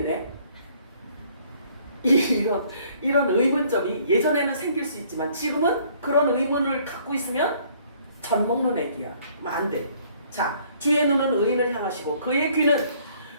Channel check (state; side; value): inverted; both; correlation -0.61